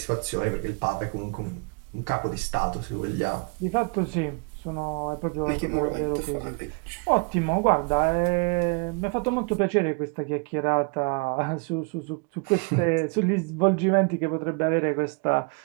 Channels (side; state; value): left; quieter; 33.0 dB